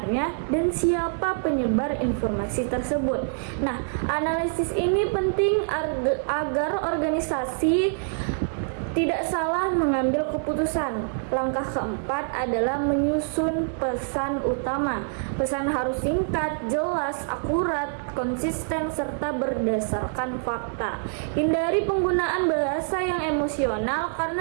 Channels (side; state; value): left; silent; digital silence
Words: dan siapa penyebar informasi tersebut. Nah, analisis ini penting agar organisasi tidak salah mengambil keputusan. Langkah keempat adalah menyusun pesan utama. Pesan harus singkat, jelas, akurat, konsisten, serta berdasarkan fakta. Hindari penggunaan bahasa yang emosional